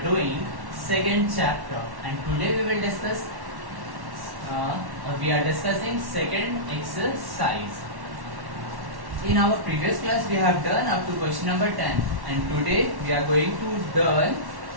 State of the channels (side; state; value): left; late; 1.1 ms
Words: second chapter. And today we will discuss, we are discussing second exercise. In our previous class, we have done up to question number 10, and today we are going to learn